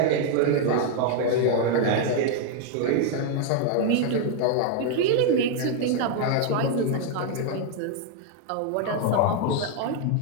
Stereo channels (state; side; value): different; both; correlation 0.00